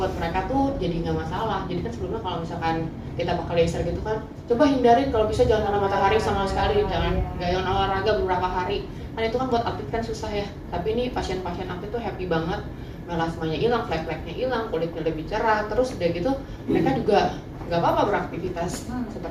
mereka tuh jadi nggak masalah. Jadi kan sebelumnya kalau misalkan kita pakai laser gitu kan, coba hindarin kalau bisa jangan kena matahari sama sekali, jangan jangan olahraga beberapa hari. Kan itu kan buat atlet kan susah ya. Tapi ini pasien-pasien atlet tuh happy banget, melasmanya hilang, flek-fleknya hilang, kulitnya lebih cerah, terus udah gitu mereka juga nggak apa-apa beraktivitas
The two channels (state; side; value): identical; both; correlation 1.00